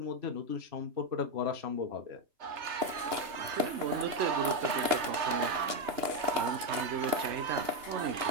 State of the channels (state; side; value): late; left; 2.8 ms